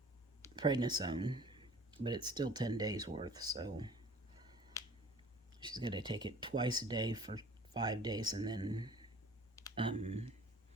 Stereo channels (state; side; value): normal; both; correlation 0.48